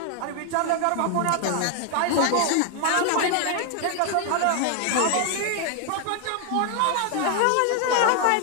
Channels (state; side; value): different; both; correlation 0.00